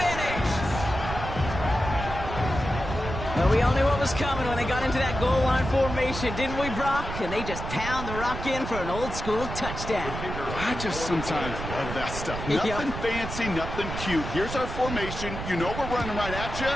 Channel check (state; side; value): noise; right; rumble, 7 dB below the sound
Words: But we all knew what was coming when they got into that goal line formation, didn't we, Brock? And they just pound the rock in for an old-school touchdown. I just sometimes love that stuff. Nothing fancy, nothing cute. Here's our formation. You know we're running right at you,